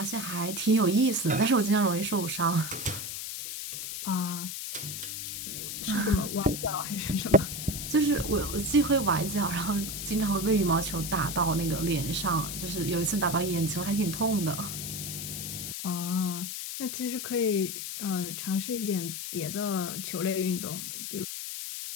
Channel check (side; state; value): left; noise; hiss, 6 dB below the sound